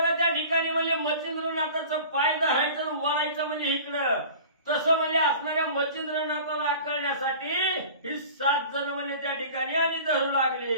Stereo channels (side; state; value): both; inverted; correlation -0.41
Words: त्या ठिकाणी म्हणजे मच्छिंद्रनाथाचं पाय धरायचं आणि वळायचं म्हणजे इकडं, तसं म्हणजे असणाऱ्या मच्छिंद्रनाथाला आकळण्यासाठी ही 7 जण म्हणजे त्या ठिकाणी आणि धरू लागले.